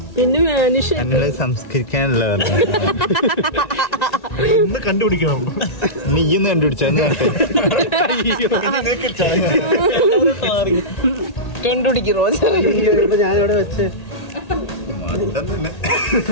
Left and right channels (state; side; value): late; right; 1.8 ms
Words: പിന്നെ മാനുഷ അങ്ങനെ സംസ്കരിക്കാനുള്ള ഇന്ന് കണ്ടുപിടിക്കണം. നീ ഇന്ന് കണ്ടുപിടിച്ചാന്ന് കണ്ടുപിടിക്കും റോജ. ഇപ്പൊ ഞാനിവിടെ വെച്ച്